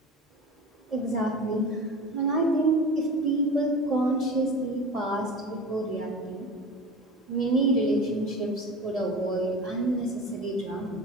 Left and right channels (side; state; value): both; normal; correlation 0.34